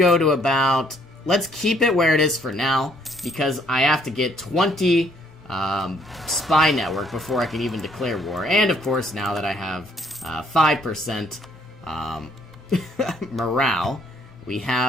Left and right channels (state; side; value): normal; both; correlation 0.66